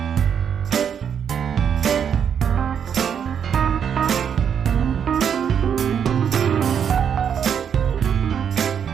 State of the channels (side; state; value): left; quieter; 7.9 dB